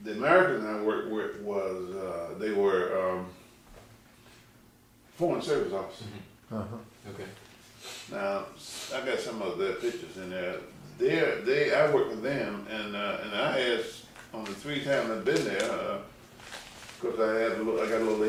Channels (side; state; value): both; identical; correlation 1.00